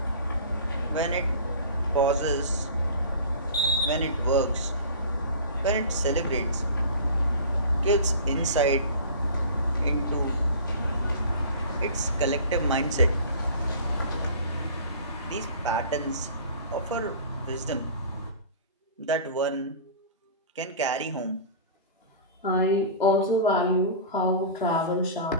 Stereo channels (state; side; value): inverted; both; correlation -0.39